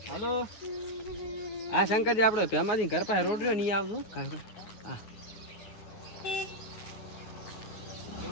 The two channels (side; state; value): right; late; 9.5 ms